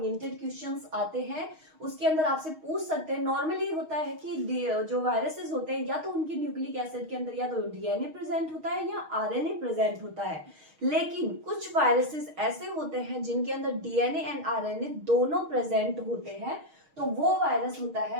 क्वेश्चंस आते हैं। उसके अंदर आपसे पूछ सकते हैं, नॉर्मली होता है कि जो वायरसेस होते हैं या तो उनकी न्यूक्लिक एसिड के अंदर या तो डीएनए प्रेजेंट होता है या आरएनए प्रेजेंट होता है, लेकिन कुछ वायरसेस ऐसे होते हैं जिनके अंदर डीएनए एंड आरएनए दोनों प्रेजेंट होते हैं, तो वो वायरस होता है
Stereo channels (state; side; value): late; left; 6.4 ms